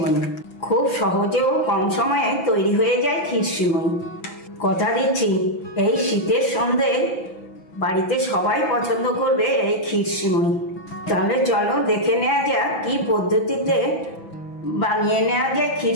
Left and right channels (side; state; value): right; late; 6.0 ms